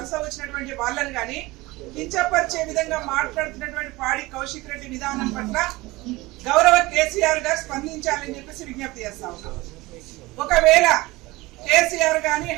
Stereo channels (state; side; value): quieter; left; 20.9 dB